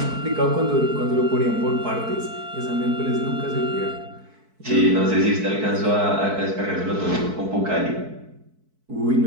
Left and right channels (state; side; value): late; left; 4.6 ms